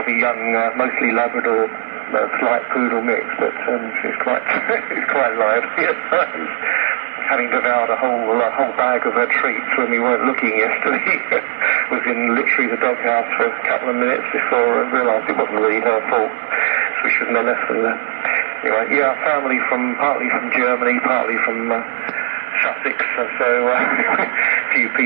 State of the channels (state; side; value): silent; left; digital silence